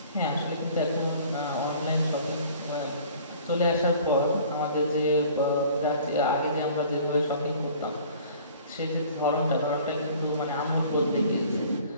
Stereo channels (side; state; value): both; inverted; correlation -0.49